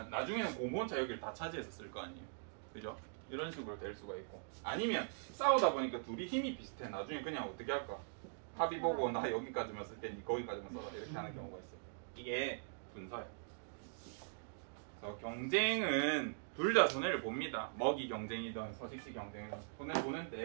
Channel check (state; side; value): silent; left; digital silence